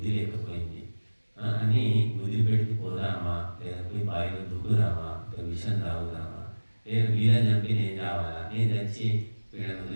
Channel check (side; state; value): both; inverted; correlation -1.00